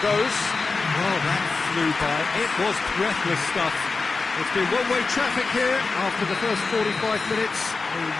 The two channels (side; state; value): right; quieter; 4.1 dB